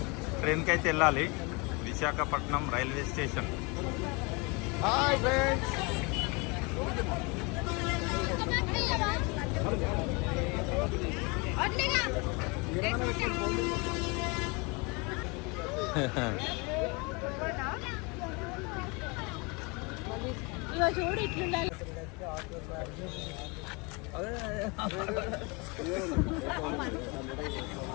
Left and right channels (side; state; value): right; quieter; 29.0 dB